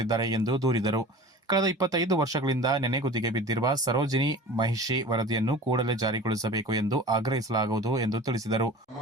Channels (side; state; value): both; normal; correlation 0.39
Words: ಎಂದು ದೂರಿದರು. ಕಳೆದ 25 ವರ್ಷಗಳಿಂದ ನೆನೆಗುದಿಗೆ ಬಿದ್ದಿರುವ ಸರೋಜಿನಿ ಮಹಿಷಿ ವರದಿಯನ್ನು ಕೂಡಲೇ ಜಾರಿಗೊಳಿಸಬೇಕು ಎಂದು ಆಗ್ರಹಿಸಲಾಗುವುದು ಎಂದು ತಿಳಿಸಿದರು.